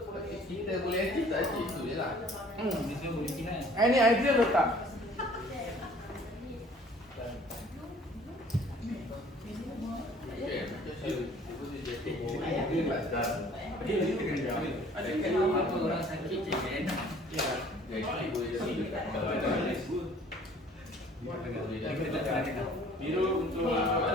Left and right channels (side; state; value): both; normal; correlation 0.53